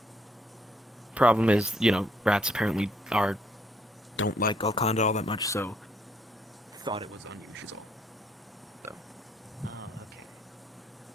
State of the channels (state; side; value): normal; both; correlation 0.69